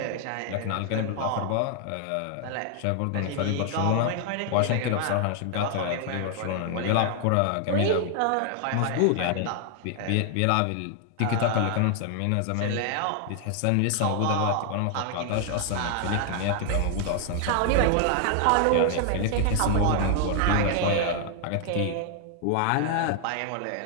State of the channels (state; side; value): different; both; correlation 0.00